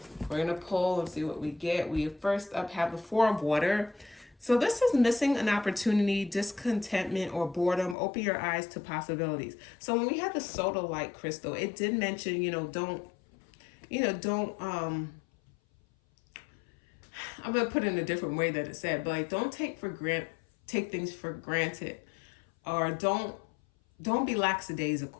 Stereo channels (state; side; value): drops out; right; at 8.0 s